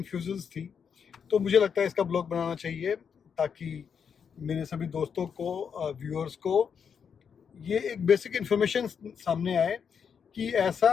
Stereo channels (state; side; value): quieter; right; 6.9 dB